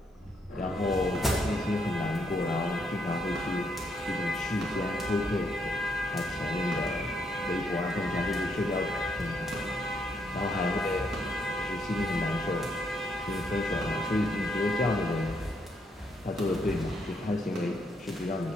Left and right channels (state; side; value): normal; both; correlation 0.75